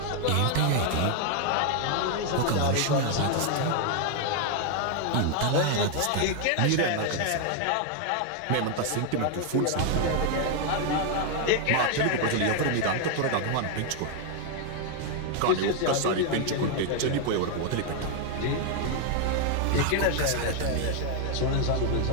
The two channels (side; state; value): both; different; correlation 0.00